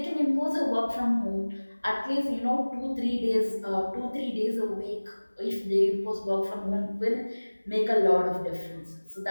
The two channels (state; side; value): inverted; both; correlation -1.00